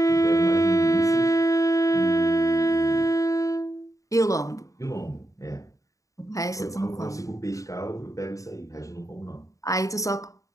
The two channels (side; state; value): right; late; 0.16 ms